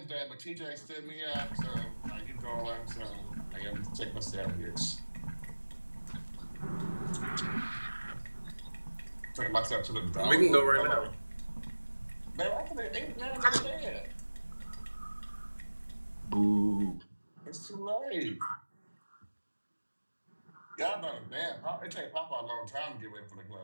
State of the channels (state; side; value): inverted; both; correlation -1.00